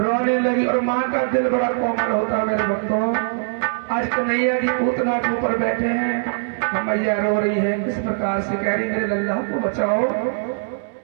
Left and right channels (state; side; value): silent; left; digital silence